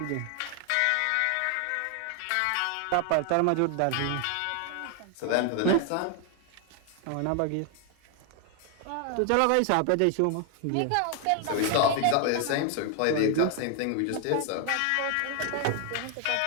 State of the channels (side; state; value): both; different; correlation 0.00